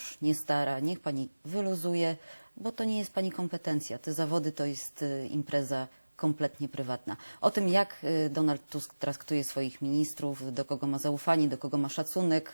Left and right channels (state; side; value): inverted; both; correlation -1.00